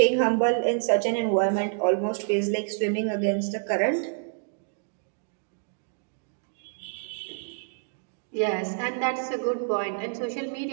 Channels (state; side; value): silent; left; digital silence